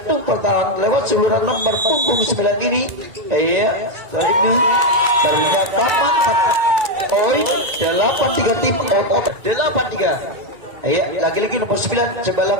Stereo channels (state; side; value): late; left; 2.3 ms